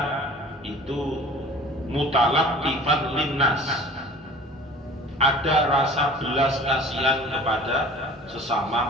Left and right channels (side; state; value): both; normal; correlation 0.44